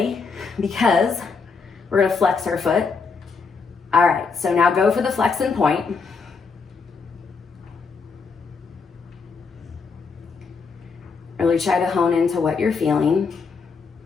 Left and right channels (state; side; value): quieter; right; 4.9 dB